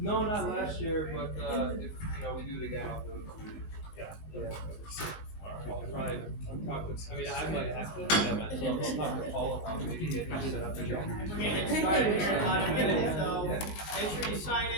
not last year, but if we do it again, I'll do it. Yeah. Yeah. I'll try and talk to. I mean, I might have to. Yeah, myself. I'll talk to Paul about maybe getting it set up again. We're gonna get started here in about a minute, so make sure you sign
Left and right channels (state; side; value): late; right; 19 ms